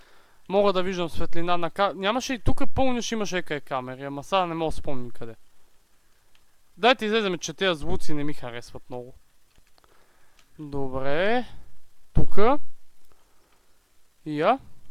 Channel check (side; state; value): both; identical; correlation 1.00